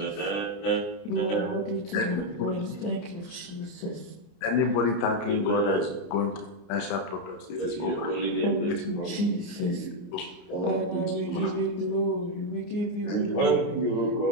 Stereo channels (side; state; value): right; late; 29 ms